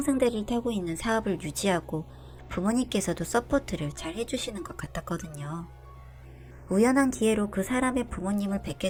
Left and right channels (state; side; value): identical; both; correlation 1.00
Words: 타고 있는 사업을 유지하고 부모님께서도 서포트를 잘 해주시는 것 같았거든요. 우연한 기회로 그 사람의 부모님을